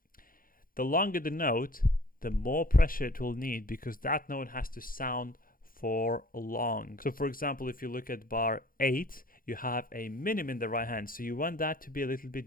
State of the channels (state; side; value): late; right; 0.41 ms